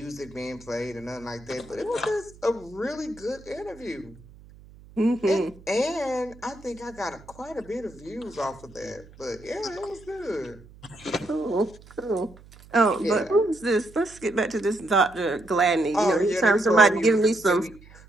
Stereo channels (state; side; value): noise; right; hum, 22 dB below the sound